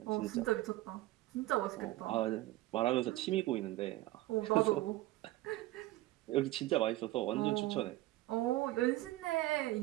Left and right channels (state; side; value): quieter; left; 17.4 dB